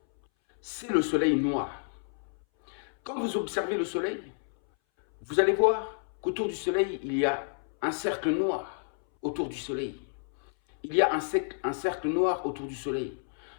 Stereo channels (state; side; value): silent; right; 58 dB below the other